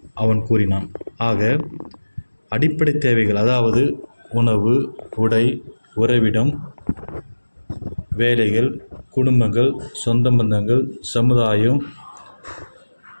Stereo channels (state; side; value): inverted; both; correlation -1.00